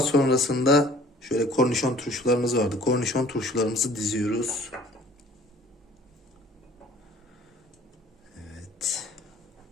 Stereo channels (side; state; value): both; normal; correlation 0.52